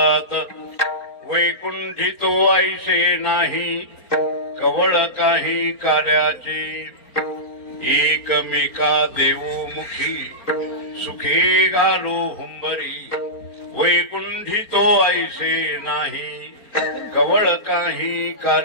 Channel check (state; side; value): late; right; 4.4 ms